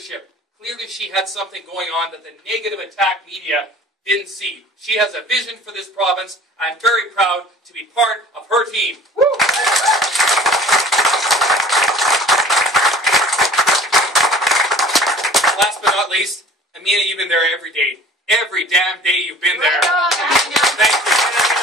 Clearly she had something going on that the negative attack media didn't see. She has a vision for this province. I'm very proud to be part of her team. Woo! Last but not least, Amina, you've been there every day. Every damn day you've been there. Thank you.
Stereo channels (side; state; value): both; normal; correlation 0.46